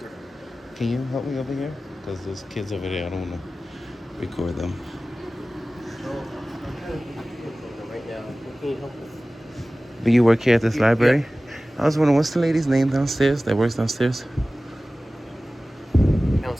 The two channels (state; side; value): normal; both; correlation 0.97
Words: Can you help me over here? Because those kids over there, I don't want to record them. Right now. What can you help with? But you work here at this library? I was wondering, what's the lady's name downstairs that works downstairs?